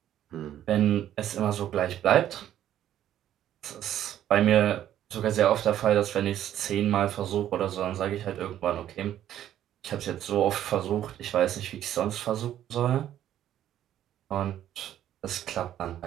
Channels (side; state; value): left; quieter; 11.5 dB